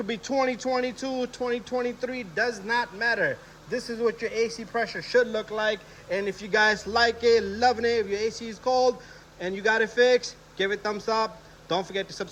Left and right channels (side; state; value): both; identical; correlation 1.00